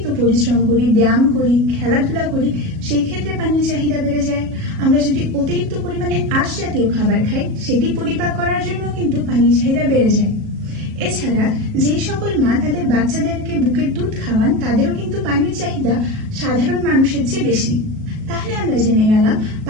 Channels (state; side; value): late; left; 37 ms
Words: পরিশ্রম করি, ব্যায়াম করি, খেলাধুলা করি, সেই ক্ষেত্রে পানির চাহিদা বেড়ে যায়। আমরা যদি অতিরিক্ত পরিমাণে আঁশ জাতীয় খাবার খাই, সেটি পরিপাক করার জন্য কিন্তু পানির চাহিদা বেড়ে যায়। এছাড়া যেই সকল মা তাদের বাচ্চাদেরকে বুকের দুধ খাওয়ান, তাদেরও কিন্তু পানির চাহিদা সাধারণ মানুষের চেয়ে বেশি। তাহলে আমরা জেনে গেলাম